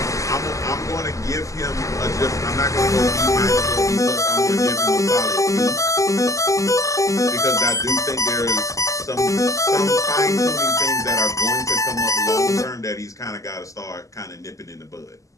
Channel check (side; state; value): right; late; 0.16 ms